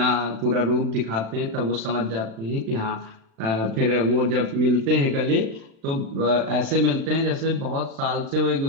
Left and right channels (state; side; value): late; left; 36 ms